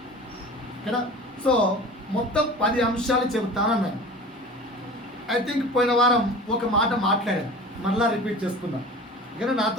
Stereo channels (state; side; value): normal; both; correlation 0.38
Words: కదా. సో మొత్తం 10 అంశాలు చెబుతానన్నాను. ఐ థింక్ పోయిన వారం ఒక మాట మాట్లాడాను, మరలా రిపీట్ చేసుకుందాం. ఇక్కడ